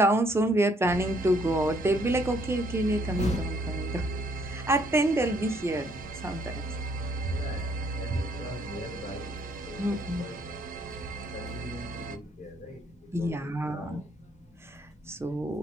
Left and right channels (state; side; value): normal; both; correlation 0.67